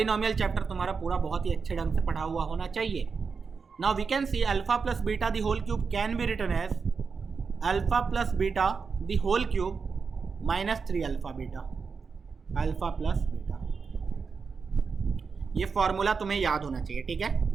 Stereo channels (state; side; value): quieter; left; 5.3 dB